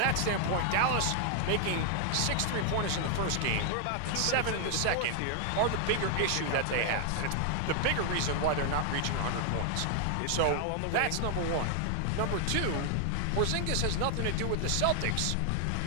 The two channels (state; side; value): different; both; correlation 0.00